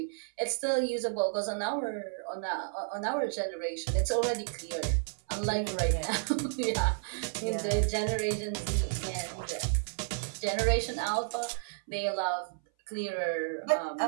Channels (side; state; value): left; silent; 57 dB below the other